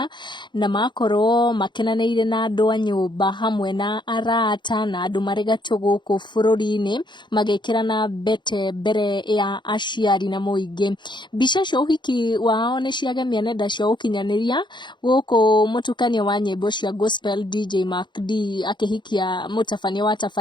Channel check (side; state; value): right; late; 0.22 ms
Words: na makorwo makenanĩire na andũ a nyũmba hamwe na arata na andũ marĩ gatũ gũkũ bũrũri-inĩ magĩkĩra na mbete mbere ya aciari na mũingĩ. Mbica cia ũhiki wao nĩ ciagemia nenda cia ũkinyanĩria gũkũ mũtukanio wa nyĩmbo cia gospel DJ Mark D akĩhikia mũtabania wa